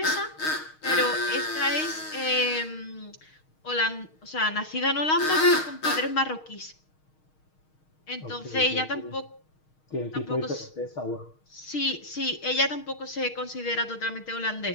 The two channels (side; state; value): right; late; 6.4 ms